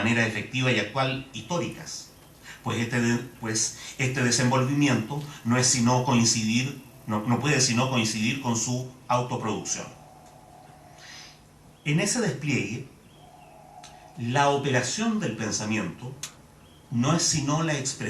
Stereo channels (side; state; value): both; identical; correlation 1.00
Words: efectiva y actual históricas, pues este desenvolvimiento no puede sino coincidir con su autoproducción. En ese despliegue, la operación del pensamiento no es sino la